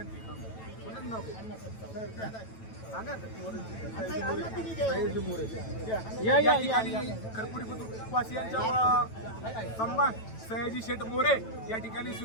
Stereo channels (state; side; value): late; right; 9.1 ms